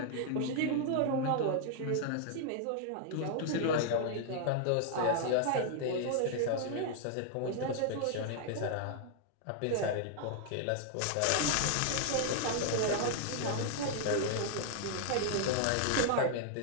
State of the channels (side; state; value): both; different; correlation 0.00